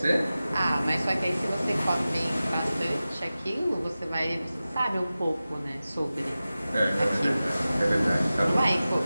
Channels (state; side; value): inverted; both; correlation -0.95